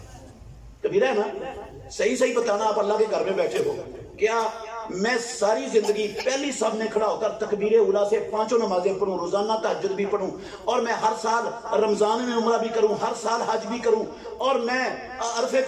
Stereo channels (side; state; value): both; identical; correlation 1.00